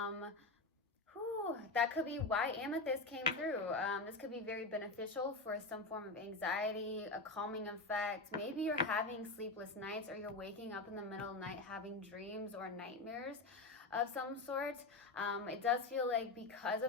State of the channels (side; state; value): right; quieter; 3.4 dB